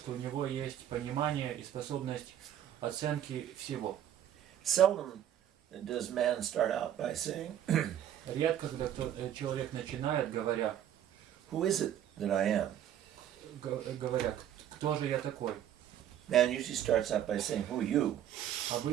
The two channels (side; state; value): left; quieter; 10.7 dB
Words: у него есть понимание и способность оценки всего. Seldom does man start out by saying, Редко, когда человек начинает, говоря, "Who is it that I am?" кто же я такой? Man usually starts out by saying, "Who are you?"